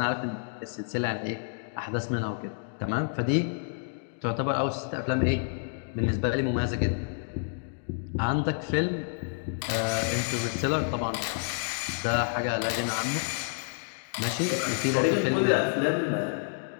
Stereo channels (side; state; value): right; silent; digital silence